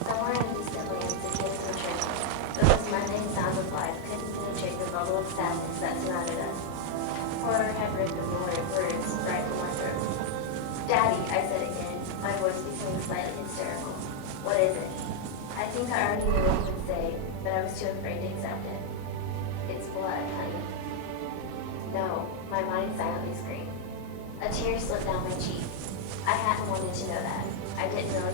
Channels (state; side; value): different; both; correlation 0.00